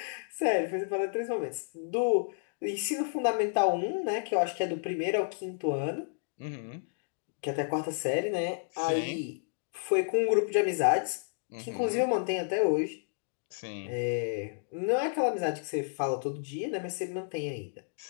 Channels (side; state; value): right; silent; digital silence